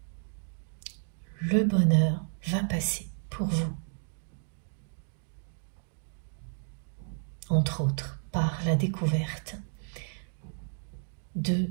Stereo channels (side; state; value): left; silent; digital silence